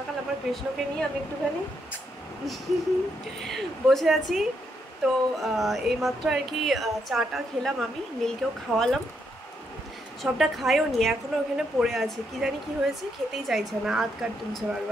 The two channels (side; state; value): both; normal; correlation 0.78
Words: আমার কৃষ্ণকে নিয়ে আমি একটুখানি বসে আছি। তো এইমাত্র আর কি চাটা খেলাম, আমি নীলকেও খাওয়ালাম। সবটা খাইও নি, এখনও ওখানে পড়ে আছে, কি জানি কি হয়েছে, খেতেই চাইছে না, আধ কাট তুলছে